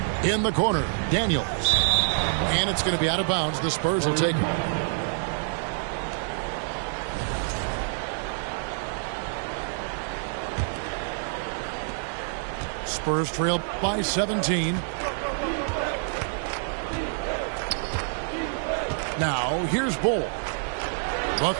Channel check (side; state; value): left; silent; digital silence